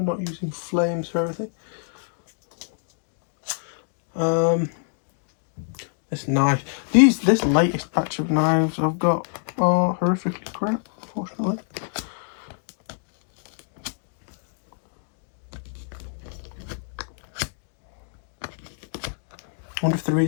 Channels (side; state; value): right; silent; digital silence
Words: not using flames for everything. This knife, this latest batch of knives I've got are horrifically crap, unfortunately. I wonder if the